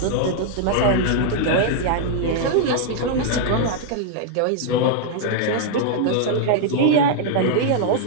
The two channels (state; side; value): different; both; correlation -0.01